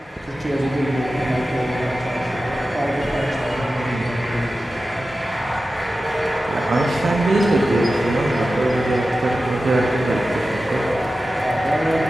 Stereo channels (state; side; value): normal; both; correlation 0.94